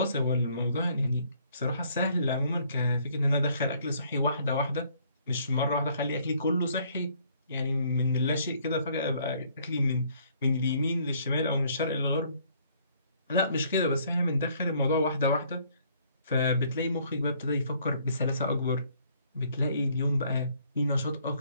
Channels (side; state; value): both; inverted; correlation -0.63